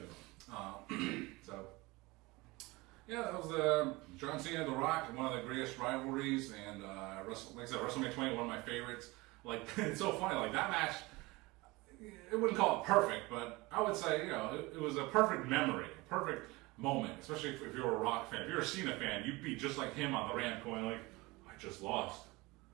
So, yeah, that was John Cena and The Rock, one of the greatest rivalries, and like I said, WrestleMania 20, one of my favorites. Like, it's so funny, like that match, I wouldn't call it perfect, but I would say, it was a perfect memory, a perfect moment, especially if you're a Rock fan. If you're a Cena fan, you'd be just like him on the ramp going like, I just lost.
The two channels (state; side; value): quieter; left; 22.8 dB